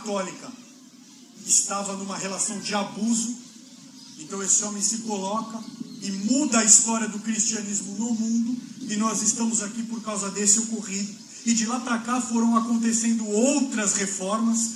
estava numa relação de abuso. Então esse homem se coloca e muda a história do cristianismo no mundo, e nós estamos aqui por causa desse ocorrido. E de lá para cá foram acontecendo outras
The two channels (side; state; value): both; identical; correlation 1.00